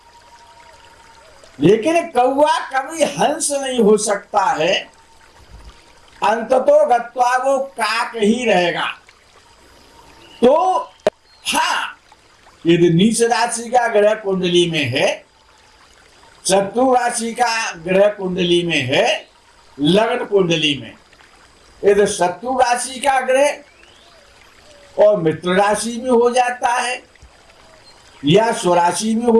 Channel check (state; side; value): identical; both; correlation 1.00